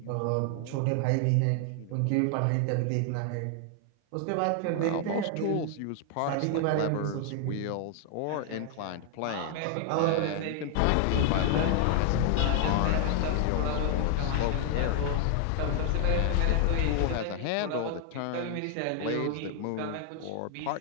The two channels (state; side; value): different; both; correlation 0.00